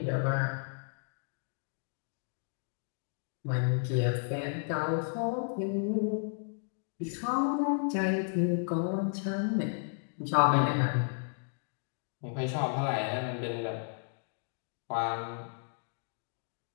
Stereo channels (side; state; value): right; silent; digital silence